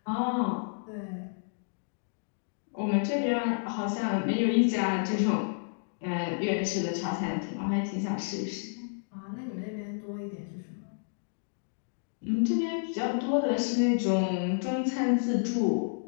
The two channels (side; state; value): right; silent; digital silence